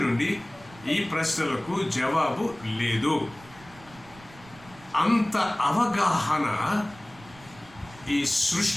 నుండి ఈ ప్రశ్నలకు జవాబు లేదు. అంత అవగాహన ఈ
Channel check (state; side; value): noise; right; rumble, 23 dB below the sound